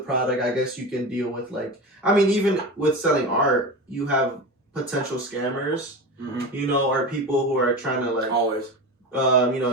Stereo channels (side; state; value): both; normal; correlation 0.26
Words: product, I guess you can deal with like, I mean, even with selling art, you have potential scammers. You know, or people who are trying to like always, you